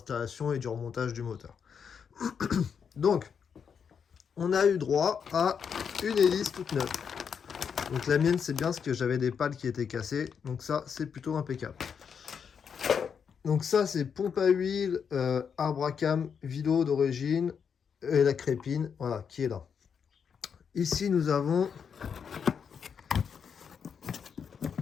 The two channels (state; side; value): quieter; right; 6.9 dB